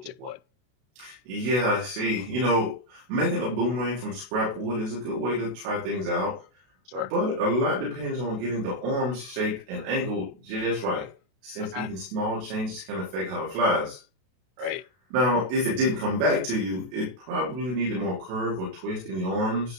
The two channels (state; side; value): late; left; 32 ms